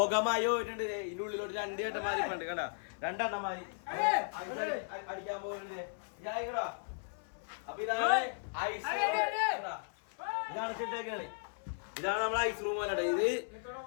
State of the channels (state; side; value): silent; right; 54 dB below the other